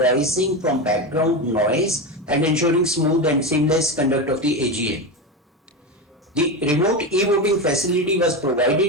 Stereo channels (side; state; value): both; normal; correlation 0.18